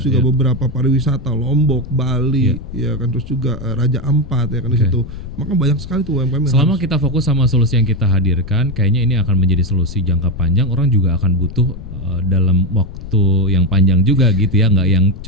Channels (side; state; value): left; noise; rumble, 14 dB below the sound